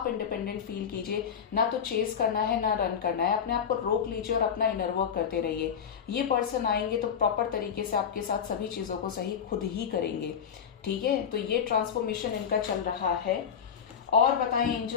इंडिपेंडेंट फील कीजिए। ना तो चेस करना है ना रन करना है, अपने आप को रोक लीजिए और अपना इनर वर्क करते रहिए। ये पर्सन आएंगे तो प्रॉपर तरीके से आपके साथ सभी चीजों को सही खुद ही करेंगे। ठीक है, तो ये ट्रांसफॉर्मेशन इनका चल रहा है। और बताएं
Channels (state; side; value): quieter; right; 7.6 dB